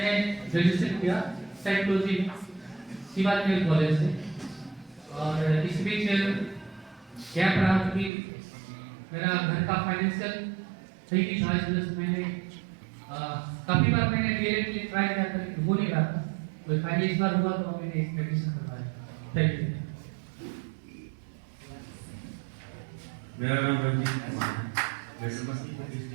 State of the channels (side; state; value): left; drops out; at 8.1 s